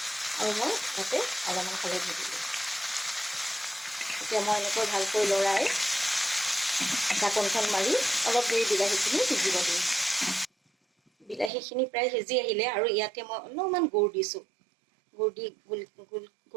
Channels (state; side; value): drops out; left; at 11.5 s